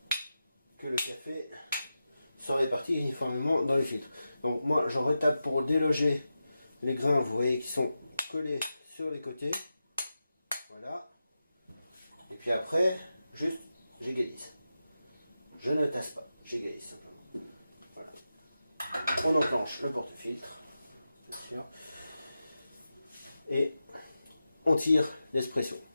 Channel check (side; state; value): both; inverted; correlation -0.91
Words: que le café soit réparti uniformément dans les filtres. Donc moi j'en retape pour déloger les grains, vous voyez, qui sont collés sur les côtés. Voilà. Et puis après, juste j'égalise. Je ne tasse pas, j'égalise simplement. Voilà. On enclenche le porte-filtre, bien sûr. Et on tire l'espresso.